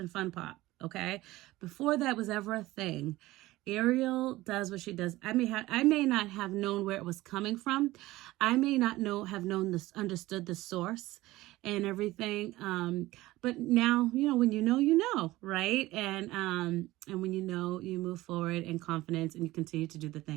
fun pop, Okay. Before that was ever a thing, Ariel does what she does. I may not have known where it was coming from. I may not have known this, understood the source and everything. But now, when you know, right? And when you know, you move forward in confidence and you continue to do the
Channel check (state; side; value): quieter; left; 18.0 dB